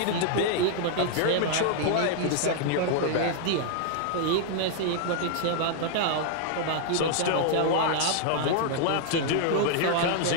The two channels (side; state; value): both; different; correlation -0.01